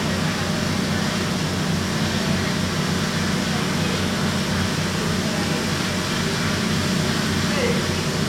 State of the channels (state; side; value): identical; both; correlation 1.00